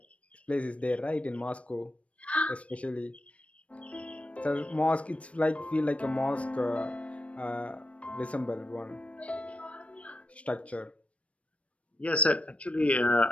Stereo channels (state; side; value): late; right; 0.063 ms